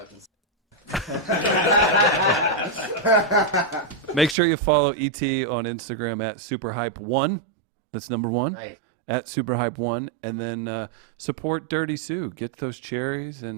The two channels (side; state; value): left; drops out; at 4.4 s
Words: Make sure you follow ET on Instagram at SuperHype1. That's number 1. Right. At SuperHype1. And then support Dirty Sue. Get those cherries